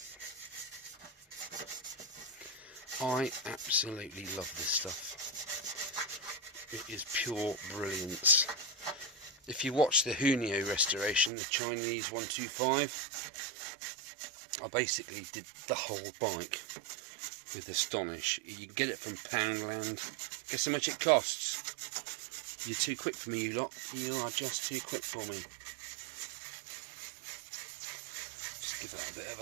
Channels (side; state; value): left; drops out; at 11.3 s